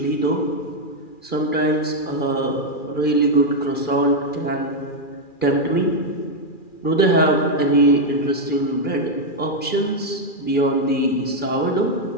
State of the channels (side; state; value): right; late; 2.4 ms